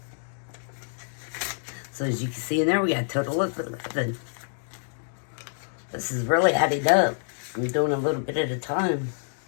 So as you can see in there, we got a total of 11. This is really adding up. I'm doing a little bit at a time.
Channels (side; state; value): right; silent; digital silence